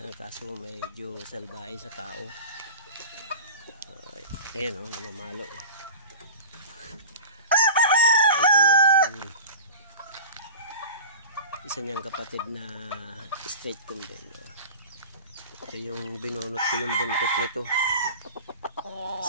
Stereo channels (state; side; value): inverted; both; correlation -0.35